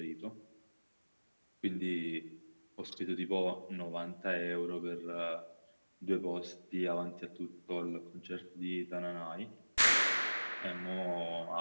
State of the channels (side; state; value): both; inverted; correlation -1.00